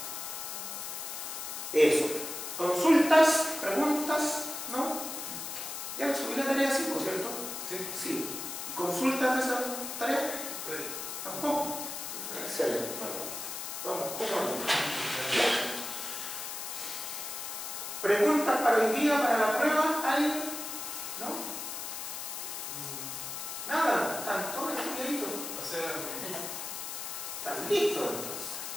Eso. ¿Consultas? ¿Preguntas? ¿No? Ya subí la tarea 5, ¿cierto? Sí. Sí. ¿Consultas de esa tarea? Sí. ¿Tampoco? Excelente. Vamos, ¿preguntas para hoy día, para la prueba? ¿Alguien? ¿No? Nada, están todos estudiaditos. O sea, ¿están listos entonces?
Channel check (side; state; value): left; noise; hiss, 6 dB below the sound